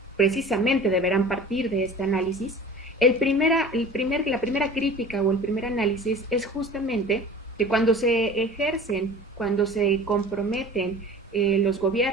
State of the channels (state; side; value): normal; both; correlation 0.40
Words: precisamente deberán partir de este análisis. La primera crítica o el primer análisis es justamente que cuando se ejercen, cuando se comprometen los